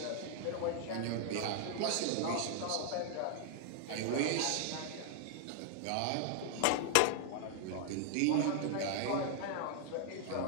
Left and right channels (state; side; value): different; both; correlation 0.00